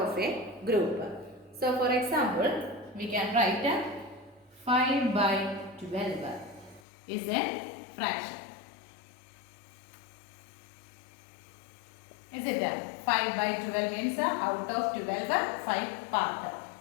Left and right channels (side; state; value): right; drops out; at 6.8 s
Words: a group. So for example, we can write 5 by 12 is a fraction. Is it 5 by 12 means out of 12 5 part.